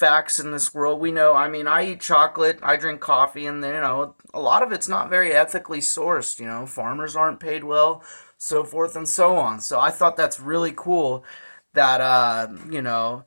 in this world. We know, I eat chocolate, I drink coffee, and, a lot of it's not very ethically sourced. Farmers aren't paid well, so forth and so on. So I thought that's really cool that,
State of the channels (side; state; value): both; inverted; correlation -1.00